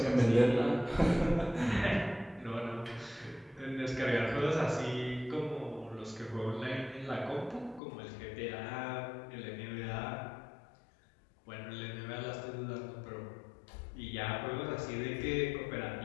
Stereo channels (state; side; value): drops out; right; at 7.8 s